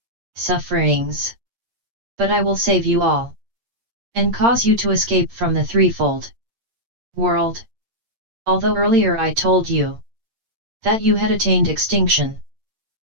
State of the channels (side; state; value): left; late; 8.7 ms